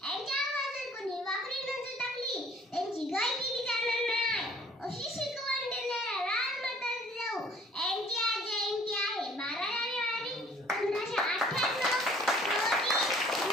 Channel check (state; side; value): normal; both; correlation 0.55